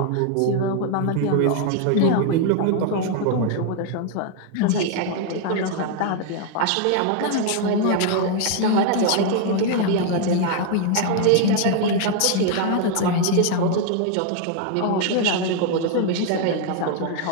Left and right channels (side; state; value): both; different; correlation 0.00